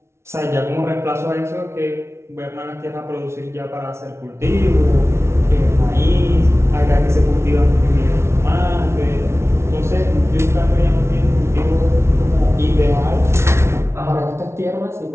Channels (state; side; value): late; left; 0.13 ms